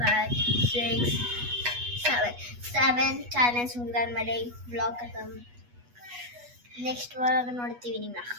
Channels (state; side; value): late; left; 8.2 ms